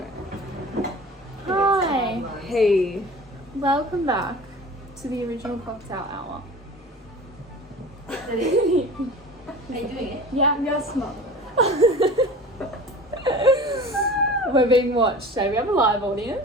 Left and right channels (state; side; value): normal; both; correlation 0.39